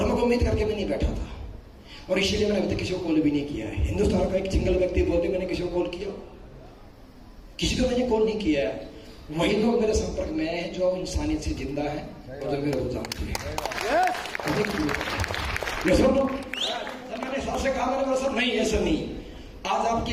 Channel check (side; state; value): both; identical; correlation 1.00